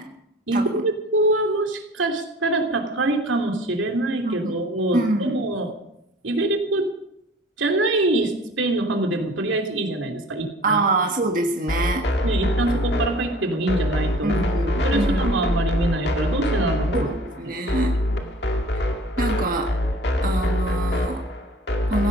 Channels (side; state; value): both; normal; correlation 0.47